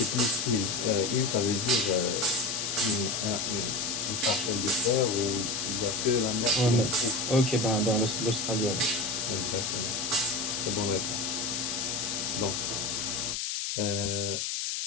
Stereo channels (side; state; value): left; noise; hiss, 1 dB below the sound